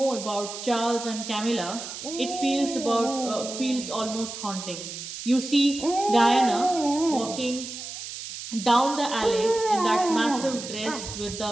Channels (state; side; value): noise; right; hiss, 9 dB below the sound